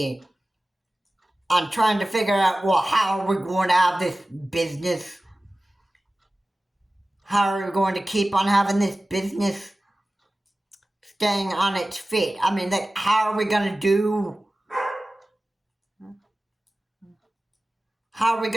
on trying to figure out, well, how are we going to have this business? How are we going to keep on having this business staying on its feet? I mean, like, how are we going to do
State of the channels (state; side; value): normal; both; correlation 0.96